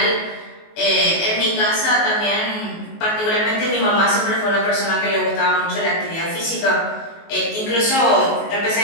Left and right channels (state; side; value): late; right; 19 ms